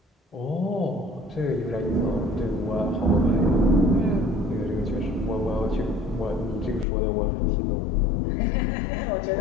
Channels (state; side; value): drops out; right; at 6.9 s